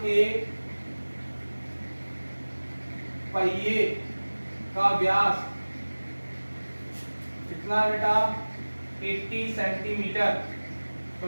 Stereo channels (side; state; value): both; inverted; correlation -1.00